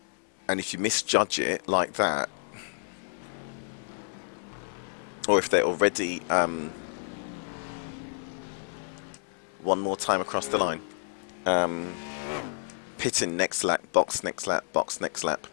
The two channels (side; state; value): right; silent; digital silence